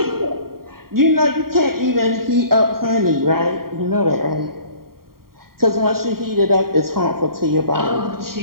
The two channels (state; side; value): late; left; 0.93 ms